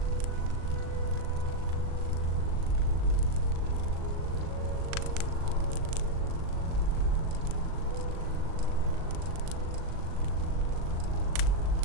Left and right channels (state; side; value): late; left; 38 ms